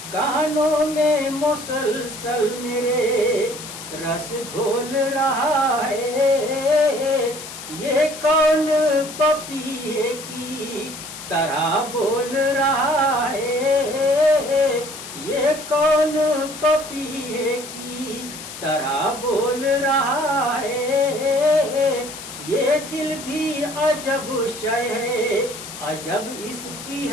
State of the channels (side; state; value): left; noise; hiss, 12 dB below the sound